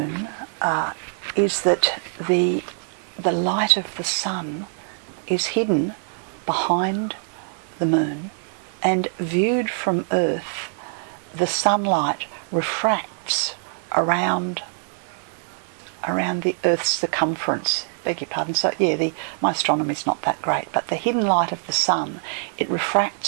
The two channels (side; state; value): left; silent; digital silence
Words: is that the light of the sun is hidden behind the moon, and viewed from Earth, the sunlight refracts around the Earth's circumference. Beg your pardon. So yeah, my astronomy is not that great, but the hidden light of the sun, it